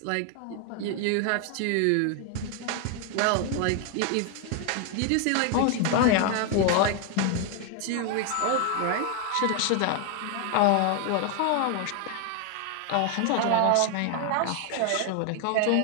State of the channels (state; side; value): different; both; correlation 0.01